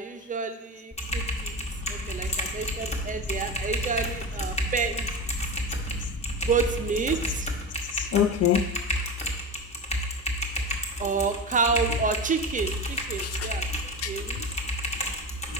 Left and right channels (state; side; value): normal; both; correlation 0.24